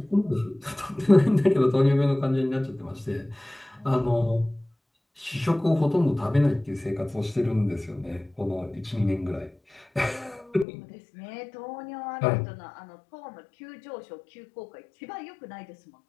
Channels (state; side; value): drops out; right; at 10.7 s